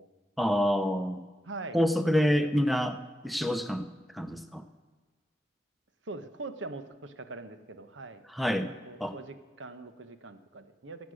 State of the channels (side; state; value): both; normal; correlation 0.87